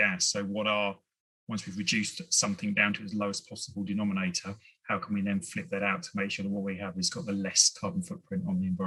So once we've reduced something down to its lowest possible denominator, how can we then flip that out to make sure that what we have has got the less carbon footprint on the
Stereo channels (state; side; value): identical; both; correlation 1.00